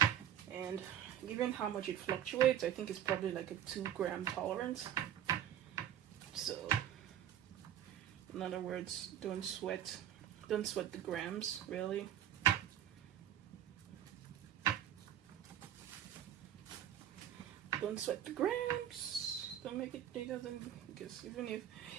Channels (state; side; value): quieter; left; 10.6 dB